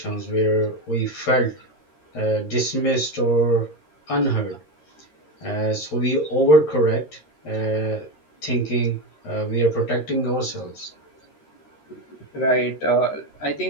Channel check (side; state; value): right; late; 13 ms